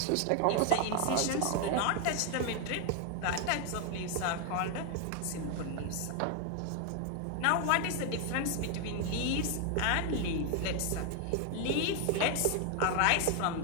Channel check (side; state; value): both; different; correlation 0.01